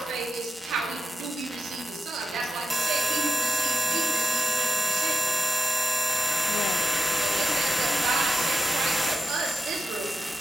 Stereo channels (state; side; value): normal; both; correlation 0.90